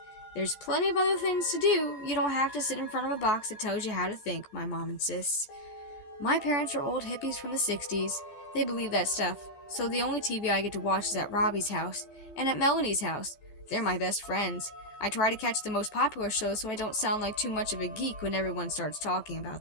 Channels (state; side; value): late; right; 15 ms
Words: There's plenty of other things to do. You don't have to sit in front of a box that tells you how to think, my mom insists. My parents are old hippies from the 60s. They believe that stuff, so the only TV I get to watch is at Robbie's house and at Melanie's house. They're my best friends. I try to catch the most popular shows so I don't sound like too much of a geek when everyone starts talking